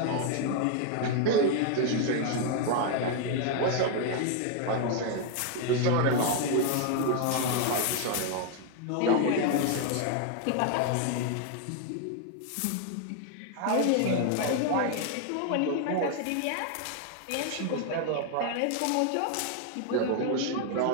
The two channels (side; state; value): both; different; correlation 0.00